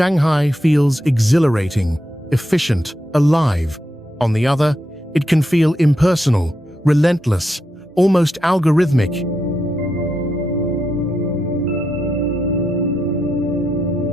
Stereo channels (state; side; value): normal; both; correlation 0.84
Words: feels exhilarating, efficient, alive. On the other, it can feel impersonal, relentless, almost algorithmic.